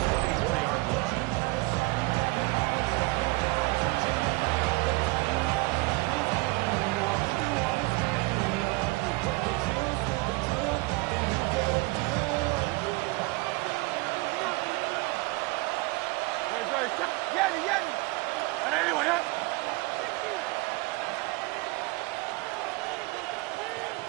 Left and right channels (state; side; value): quieter; left; 24.7 dB